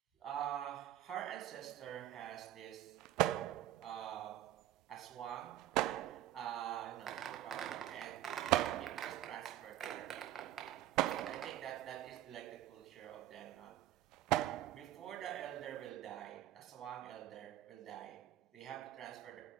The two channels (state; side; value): quieter; left; 13.2 dB